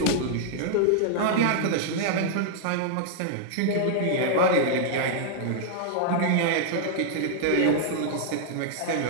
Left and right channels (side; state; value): both; different; correlation -0.01